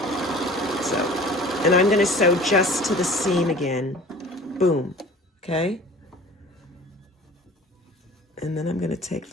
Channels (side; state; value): both; normal; correlation 0.45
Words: So, and I'm going to sew just to the seam again. Boom. Okay, and then I'm going to take